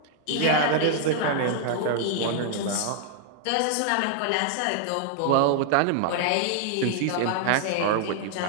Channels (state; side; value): different; both; correlation 0.00